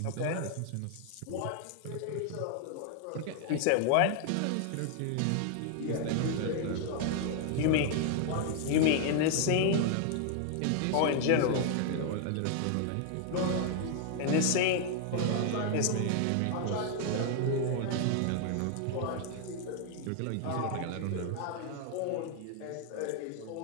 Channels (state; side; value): different; both; correlation 0.00